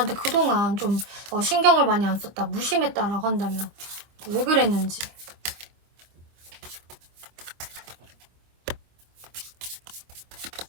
그동안 좀 신경을 많이 안 썼다, 무심했다라고 한다면 왜 그랬는지.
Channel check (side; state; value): left; late; 25 ms